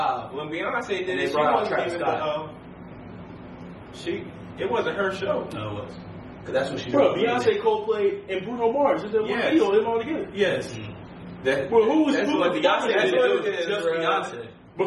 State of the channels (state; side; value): identical; both; correlation 1.00